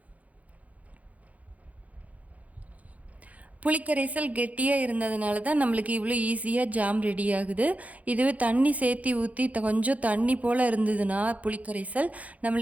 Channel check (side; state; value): left; late; 0.071 ms